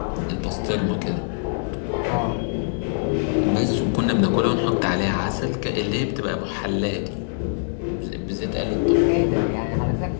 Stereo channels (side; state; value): right; silent; 63 dB below the other